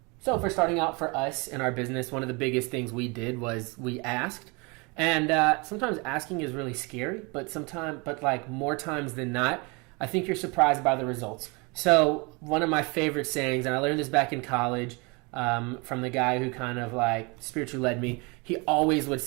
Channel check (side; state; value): left; quieter; 28.8 dB